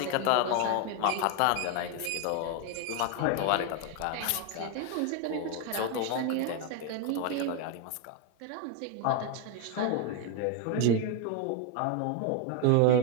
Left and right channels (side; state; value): both; different; correlation 0.01